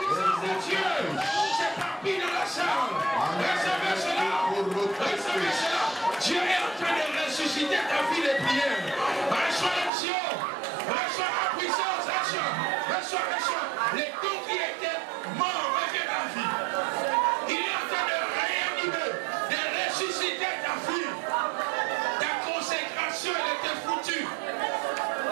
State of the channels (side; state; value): left; drops out; at 9.9 s